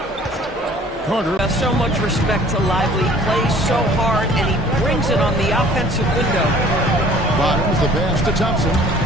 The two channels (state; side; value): normal; both; correlation 0.52